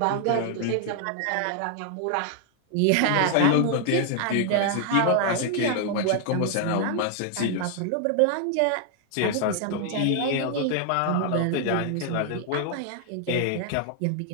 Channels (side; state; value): both; different; correlation 0.00